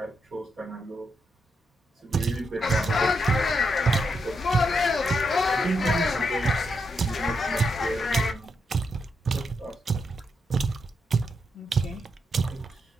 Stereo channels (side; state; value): both; normal; correlation 0.81